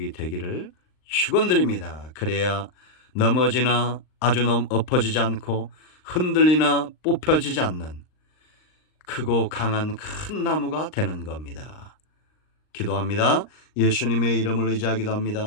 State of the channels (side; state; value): right; late; 39 ms